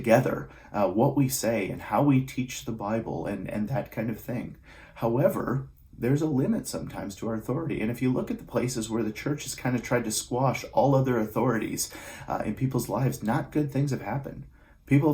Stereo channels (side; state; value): both; identical; correlation 1.00